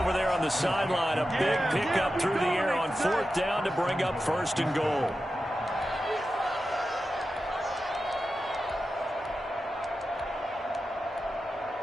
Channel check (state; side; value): normal; both; correlation 0.91